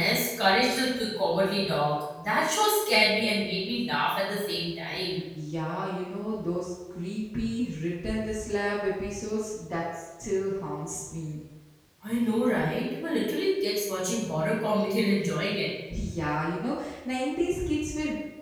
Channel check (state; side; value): identical; both; correlation 1.00